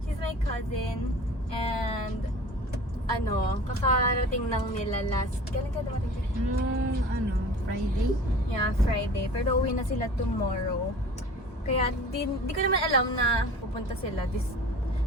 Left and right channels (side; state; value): both; normal; correlation 0.42